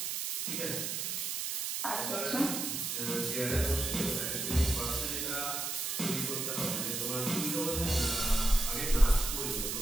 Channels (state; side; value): noise; right; hiss, 2 dB below the sound